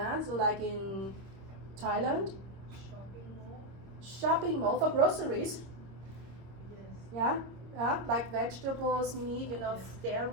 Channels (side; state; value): left; late; 26 ms